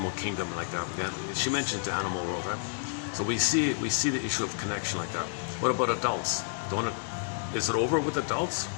kingdom like that. Yeah, she mentioned the animal world, right? So we see the issue of connection like that. What about adults? Is it over with adults?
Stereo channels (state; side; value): silent; right; digital silence